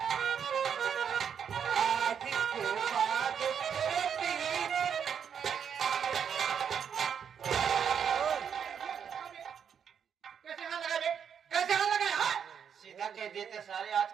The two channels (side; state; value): left; quieter; 7.7 dB